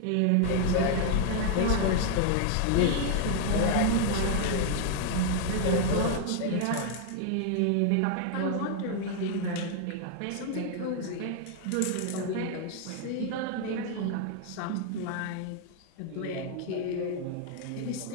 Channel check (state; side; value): different; both; correlation 0.00